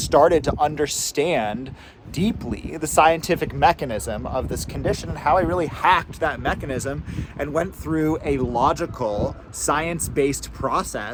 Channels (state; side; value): identical; both; correlation 1.00